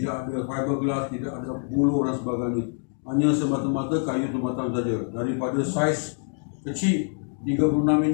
ada fiberglass, tidak ada buluh dan sebagainya, hanya semata-mata kayu tempatan saja, daripada saiz kecil 36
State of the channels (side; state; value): right; silent; 56 dB below the other